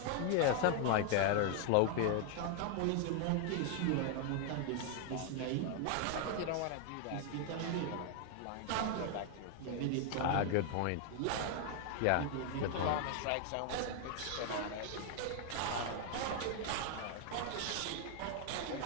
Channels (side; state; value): both; different; correlation 0.00